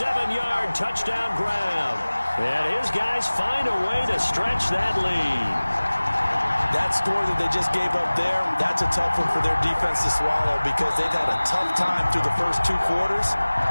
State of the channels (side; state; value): both; inverted; correlation -1.00